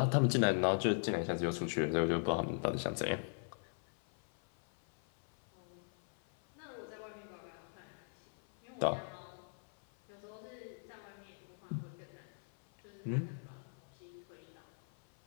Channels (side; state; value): right; silent; 51 dB below the other